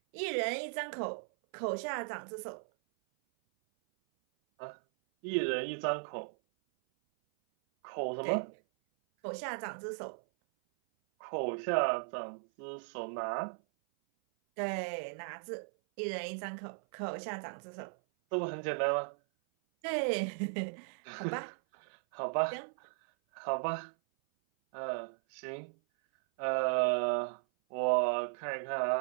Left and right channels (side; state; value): left; silent; 53 dB below the other